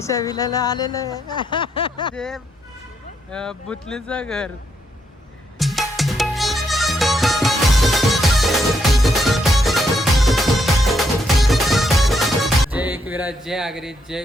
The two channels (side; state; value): both; normal; correlation 0.77